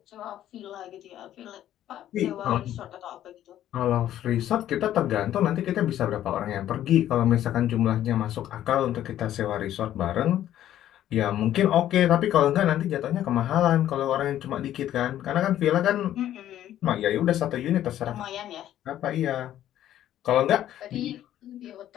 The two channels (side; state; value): right; quieter; 12.0 dB